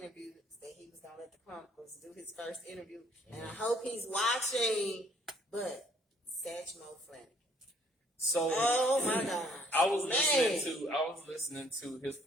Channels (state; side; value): normal; both; correlation 0.62